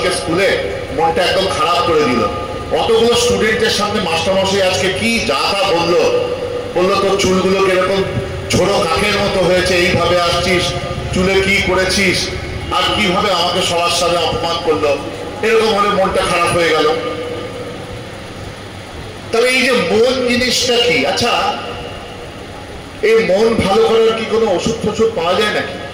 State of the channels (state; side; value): identical; both; correlation 1.00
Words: স্কুলে, মনটা একদম খারাপ করে দিল। অতগুলো স্টুডেন্টের সামনে মাস্টারমশাই আজকে কি যা তা বললো তোর চুলগুলো কিরকম ছোট কাকের মতো হয়েছে, এইভাবে আসছিস, চুলে কি করেছিস, আর কিভাবে আমাকে সবার সাথে অপমান করলো। এরকম হলে মনটা খারাপ হয়ে গেল। তবে এই যে মন জিনিসটা কি? আচ্ছা, এই মন ভালো করার কি কোনো ওষুধ ফষুধ পাওয়া যায় নাকি?